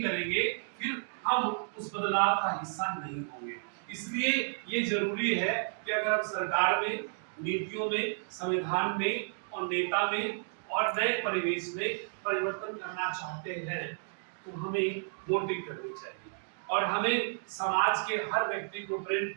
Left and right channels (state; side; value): silent; left; digital silence